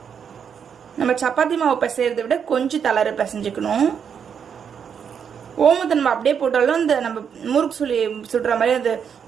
நம்ம சப்பாத்தி மாவு பிசைறதை விட கொஞ்சம் தளர பிசைஞ்சுக்கணும். ஓமத்தை நம்ம அப்படியே போட்டாலும் இந்த நம்ம முறுக்கு சுடுற மாதிரி அது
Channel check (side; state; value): left; quieter; 7.4 dB